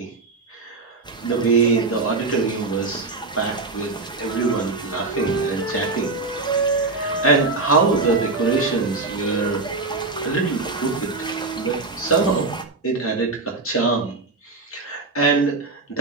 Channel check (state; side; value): quieter; left; 3.6 dB